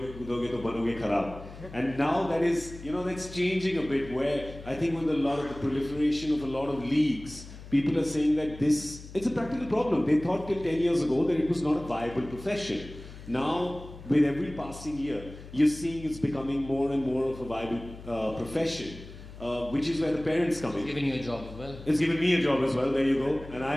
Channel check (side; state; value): left; noise; hum, 15 dB below the sound